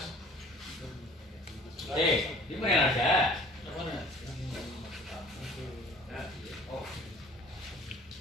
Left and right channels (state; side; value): normal; both; correlation 0.49